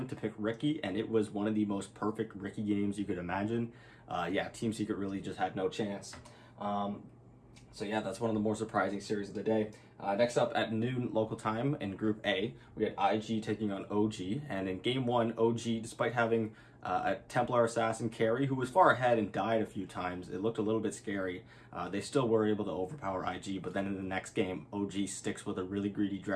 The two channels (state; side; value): identical; both; correlation 1.00